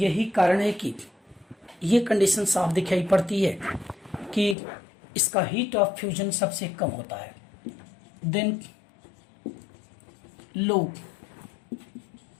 कारण है कि ये कंडीशन साफ दिखाई पड़ती है कि इसका हीट ऑफ फ्यूजन सबसे कम होता है। Then low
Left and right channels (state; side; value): drops out; right; at 4.5 s